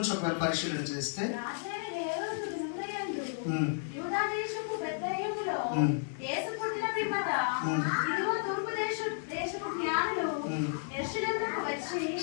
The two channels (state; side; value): silent; right; 56 dB below the other